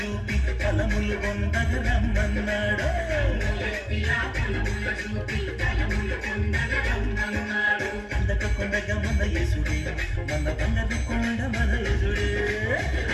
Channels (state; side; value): identical; both; correlation 1.00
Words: ఫలములు పొందగ రమ్మన్నాడు. అందక కొండగా మన యేసుడే మన బంగారు కొండ మన యేసుడే.